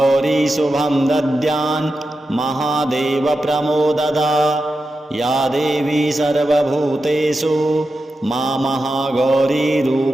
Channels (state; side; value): normal; both; correlation 0.90